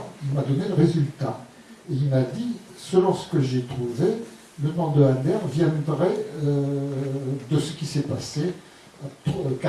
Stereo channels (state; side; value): identical; both; correlation 1.00